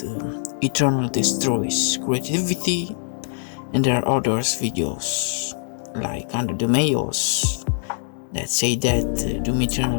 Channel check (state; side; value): silent; right; digital silence